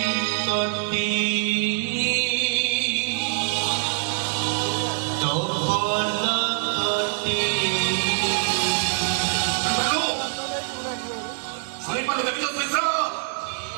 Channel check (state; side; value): silent; left; digital silence